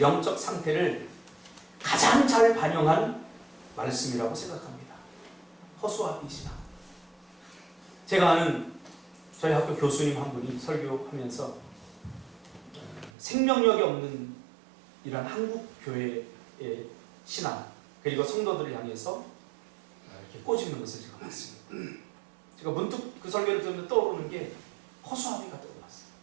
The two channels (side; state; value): left; drops out; at 13.1 s